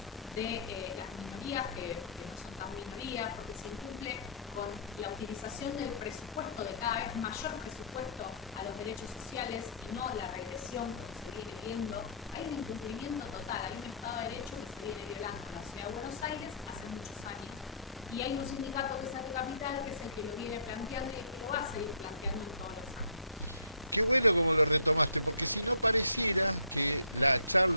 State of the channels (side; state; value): both; inverted; correlation -0.54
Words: de las minorías, que no son tan minorías, porque se incumple con la utilización del presupuesto, de cada vez mayor presupuesto a los derechos sociales y no la regresión como se viene viendo. Hay un incumplimiento total, hay un Estado de Derecho que se viene violando en la Ciudad de Buenos Aires hace muchos años, y hay un sindicato que es ATE Capital, que es el que lo viene planteando y el que lo va a seguir planteando en todos los años. Qué bueno como lo retomaste, porque si no pareciera que la